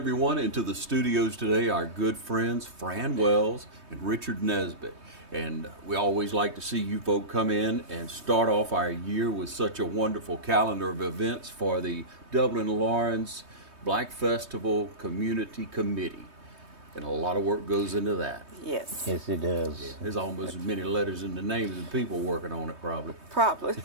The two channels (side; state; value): left; late; 3.2 ms